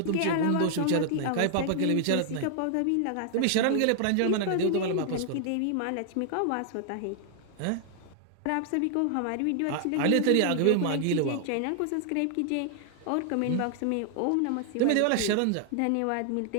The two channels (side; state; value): both; different; correlation 0.00